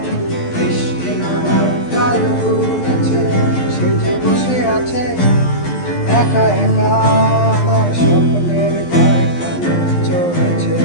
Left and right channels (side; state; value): right; late; 12 ms